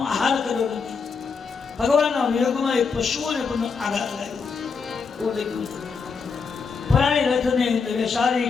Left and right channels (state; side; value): quieter; right; 5.3 dB